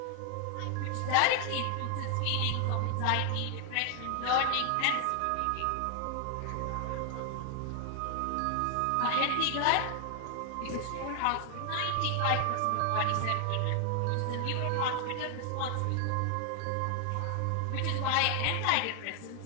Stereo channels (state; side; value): different; both; correlation 0.00